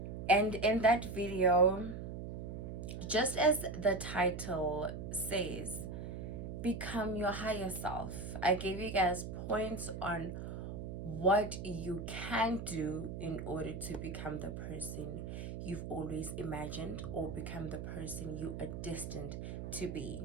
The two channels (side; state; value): right; noise; hum, 7 dB below the sound